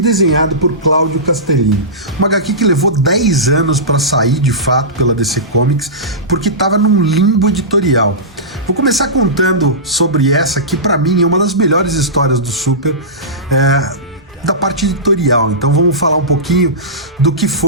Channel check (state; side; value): normal; both; correlation -0.19